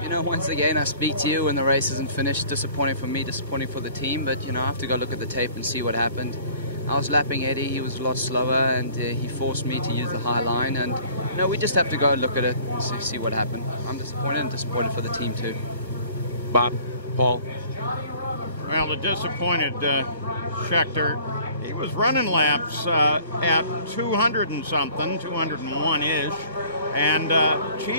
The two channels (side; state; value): both; inverted; correlation -0.52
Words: You know, once again, I speak to you when the race isn't finished. Disappointing for me, disappointing for the team, but, you know, I have to go look at the tape and see what happened. I was lapping Eddie, he was a lot slower, and he forced me to use the high line, and, you know, we just have to go look at it and see what happened. I'm disappointed and disappointed for the team, too. Bob, Paul? Well, the disappointed Schechter, he was running laps at 200 and something, 201-ish, and